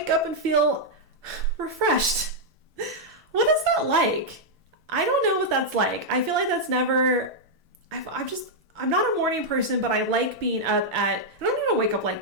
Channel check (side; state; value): both; normal; correlation -0.04